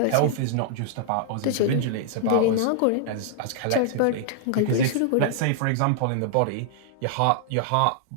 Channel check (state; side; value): different; both; correlation -0.01